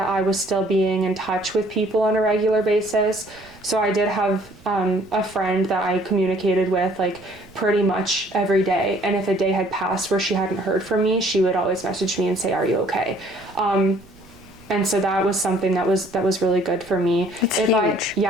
I was still being in touch with people on a regular basis. So I did have a friend that I communicated with like pretty much every day. And if a day had passed where she hadn't heard from me, she would always message me and say, "Are you okay?" And so that was something that was really good for me. It's huge.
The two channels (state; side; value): noise; right; rumble, 25 dB below the sound